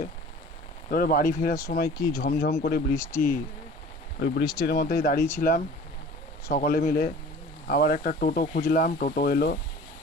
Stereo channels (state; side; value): normal; both; correlation 0.45